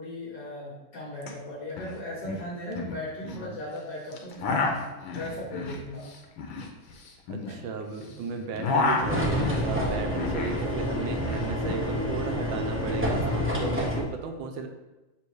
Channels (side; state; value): both; normal; correlation 0.11